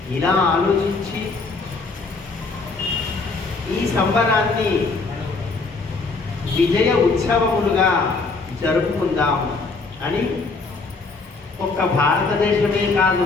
ఇలా ఆలోచించి ఈ సంబరాన్ని విజయ ఉత్సవములుగా జరుపుకుందాం అని ఒక్క భారతదేశమే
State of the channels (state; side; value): quieter; right; 3.9 dB